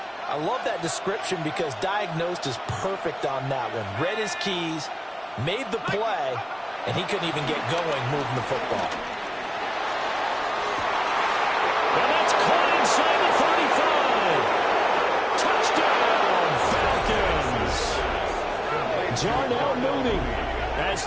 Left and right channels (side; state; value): both; identical; correlation 1.00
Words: I love that description because diagnosed is perfect on that one. Read his keys, made the play, and he couldn't even get going moving the football. tides are now moving as